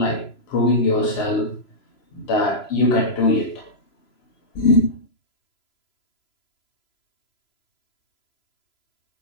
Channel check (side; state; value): right; late; 3.0 ms